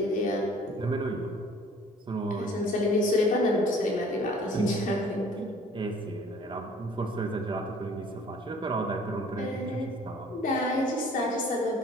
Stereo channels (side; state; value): both; normal; correlation 0.53